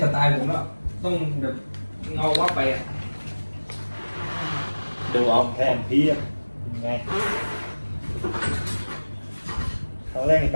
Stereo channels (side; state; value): both; inverted; correlation -1.00